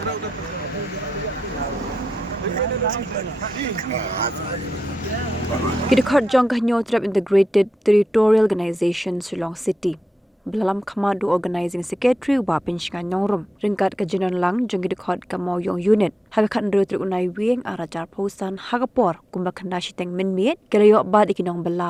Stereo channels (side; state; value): both; normal; correlation 0.89